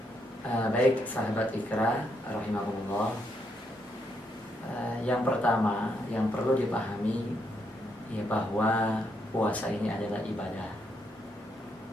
Baik sahabat Ikra rahimahumullah, yang pertama yang perlu dipahami ya bahwa puasa ini adalah ibadah,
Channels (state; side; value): normal; both; correlation 0.77